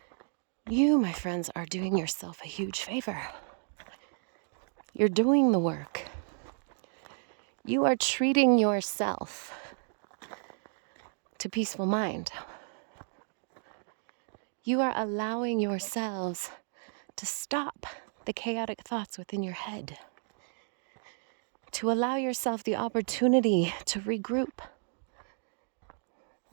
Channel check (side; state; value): left; silent; 56 dB below the other